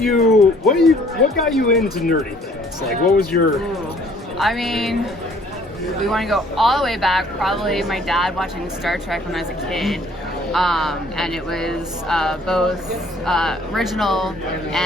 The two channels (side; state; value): both; normal; correlation 0.58